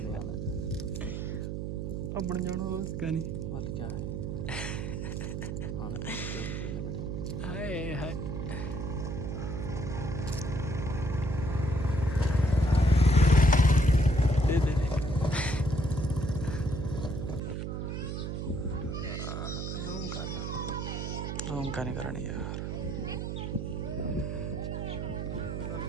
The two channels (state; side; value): noise; right; hum, 3 dB below the sound